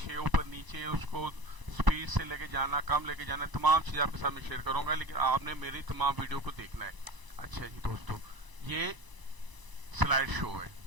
ऊपर नीचे, उसको स्पीड से लेके जाना, कम लेके जाना, तमाम चीजें आपके साथ में शेयर करूंगा, लेकिन आपने मेरी तमाम वीडियो को देखना है। अच्छा जी दोस्तों, ये स्लाइड शो है।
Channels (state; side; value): late; left; 1.0 ms